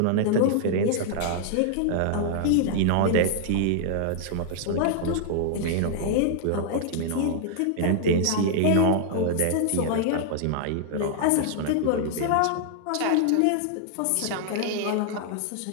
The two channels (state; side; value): different; both; correlation -0.01